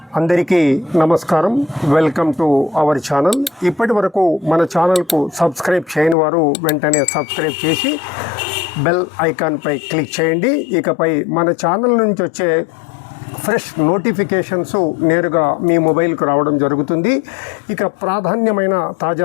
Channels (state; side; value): drops out; right; at 6.2 s